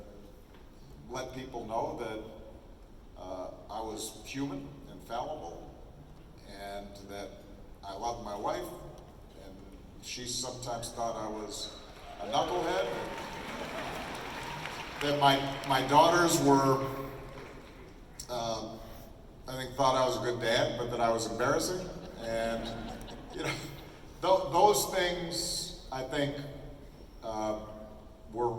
let people know that I was human and fallible, and that I loved my wife, and she sometimes thought I was a knucklehead, that my daughters were, I think, thought I was a good dad, but that I was embarrassing. And, those things, I think, were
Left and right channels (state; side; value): identical; both; correlation 1.00